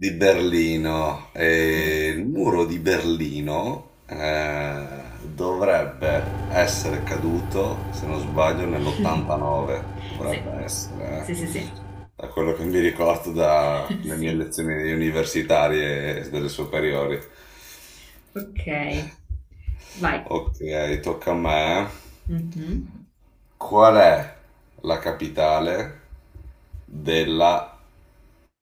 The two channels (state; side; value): identical; both; correlation 1.00